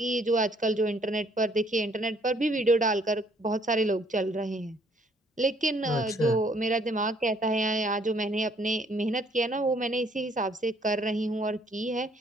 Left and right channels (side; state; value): both; normal; correlation 0.64